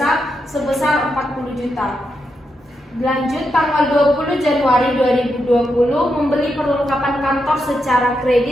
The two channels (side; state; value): both; normal; correlation 0.84